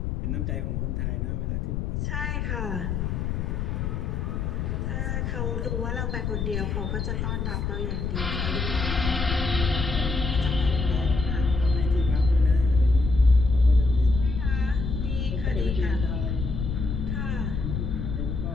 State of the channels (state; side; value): noise; left; rumble, 2 dB below the sound